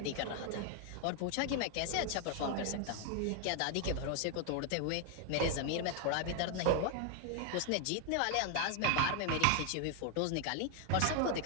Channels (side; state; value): both; different; correlation 0.00